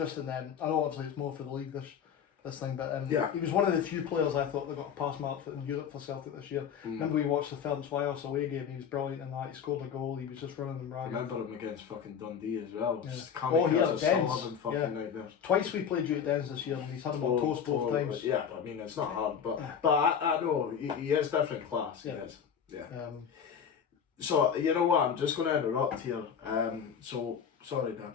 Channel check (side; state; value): right; quieter; 7.5 dB